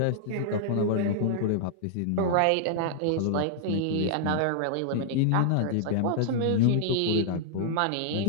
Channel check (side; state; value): both; different; correlation -0.01